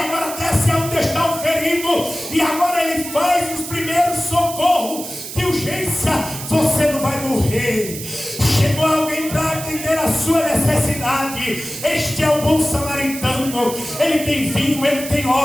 desce onde está o ferido, e agora ele faz os primeiros socorros de urgência. Você não vai morrer. Chegou alguém para atender a sua necessidade. Este é o bom samaritano. Ele tem vinho, ele tem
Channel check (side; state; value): right; noise; hiss, 10 dB below the sound